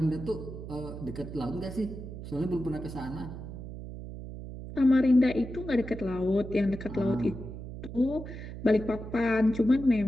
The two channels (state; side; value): noise; right; hum, 10 dB below the sound